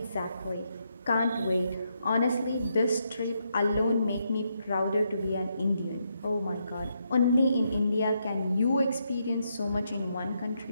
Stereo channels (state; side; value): inverted; both; correlation -0.79